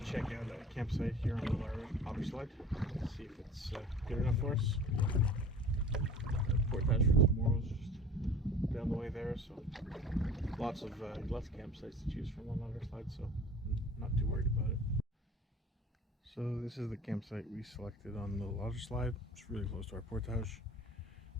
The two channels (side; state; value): both; normal; correlation 0.43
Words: check out a campsite here on the Otter slide. See if it's good enough for us. Portage for tomorrow's just down the way there, so lots of campsites to choose from on Otter slide, so I'm not too worried about it. So this is the campsite we selected on the Otter slide. It's really close to our portage,